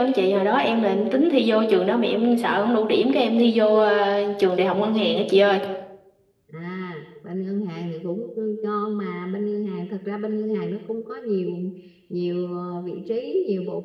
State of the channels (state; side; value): identical; both; correlation 1.00